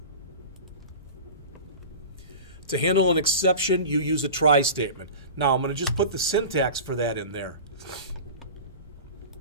To handle an exception, you use a try statement. Now, I'm going to just put the syntax for that in there.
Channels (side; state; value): both; inverted; correlation -0.34